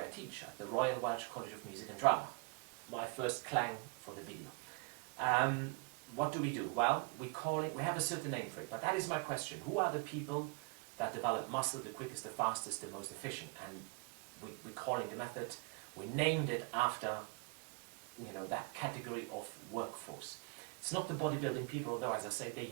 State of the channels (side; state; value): left; quieter; 31.0 dB